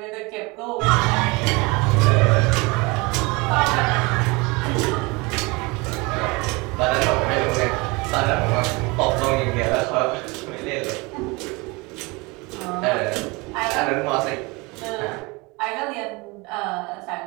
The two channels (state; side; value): quieter; left; 26.0 dB